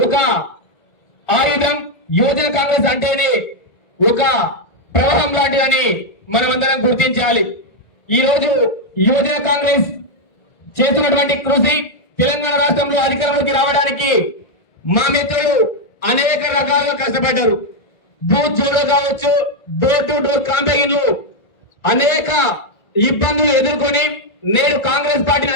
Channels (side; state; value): right; late; 1.5 ms